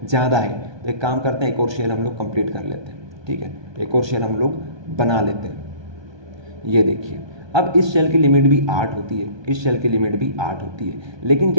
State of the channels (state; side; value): late; left; 1.2 ms